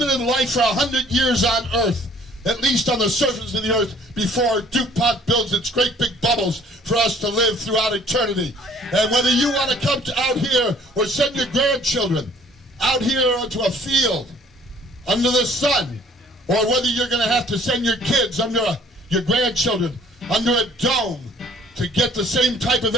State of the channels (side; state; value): both; normal; correlation 0.56